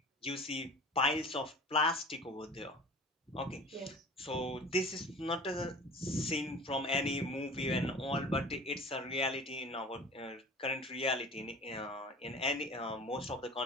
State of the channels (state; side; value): normal; both; correlation 0.41